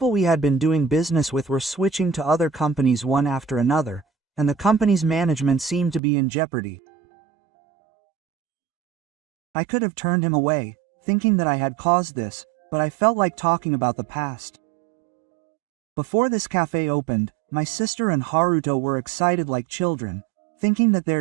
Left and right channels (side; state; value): left; drops out; at 6.0 s